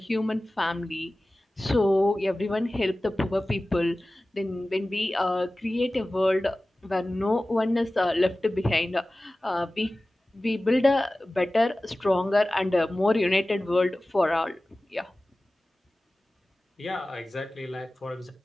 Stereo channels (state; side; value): normal; both; correlation 0.97